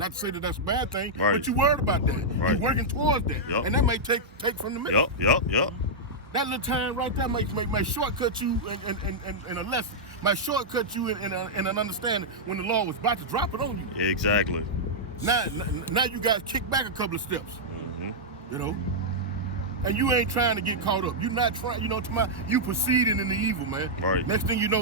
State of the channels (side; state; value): both; normal; correlation -0.07